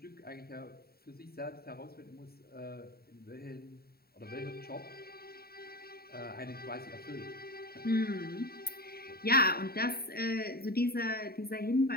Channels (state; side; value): late; right; 0.45 ms